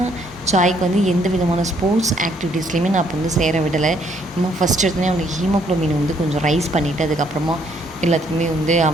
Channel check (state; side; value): normal; both; correlation 0.68